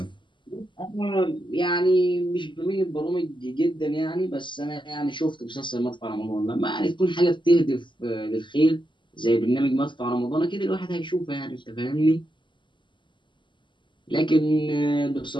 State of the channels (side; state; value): right; late; 0.23 ms